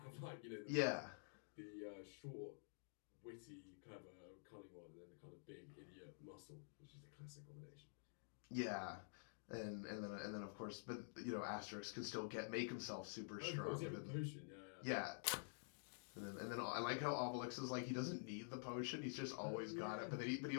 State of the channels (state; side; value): silent; right; digital silence